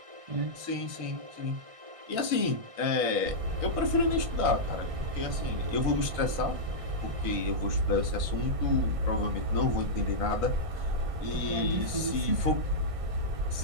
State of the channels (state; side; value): late; left; 1.6 ms